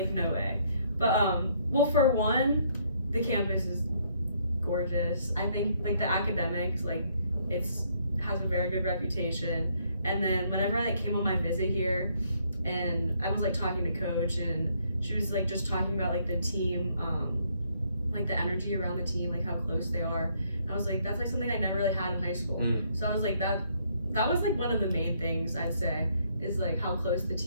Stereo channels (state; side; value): inverted; both; correlation -0.69